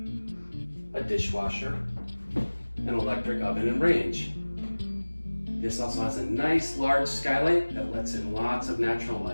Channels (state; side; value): inverted; both; correlation -1.00